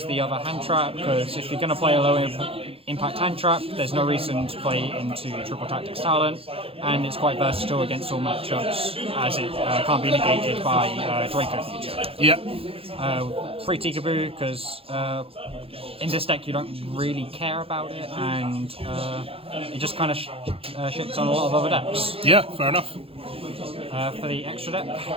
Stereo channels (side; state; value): left; late; 0.27 ms